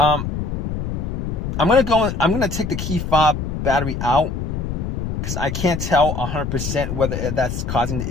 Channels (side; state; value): left; noise; rumble, 3 dB below the sound